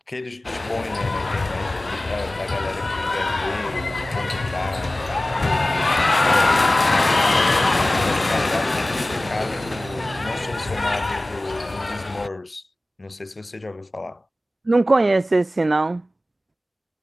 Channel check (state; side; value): normal; both; correlation 0.96